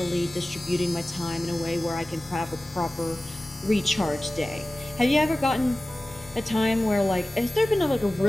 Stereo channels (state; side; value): normal; both; correlation 0.97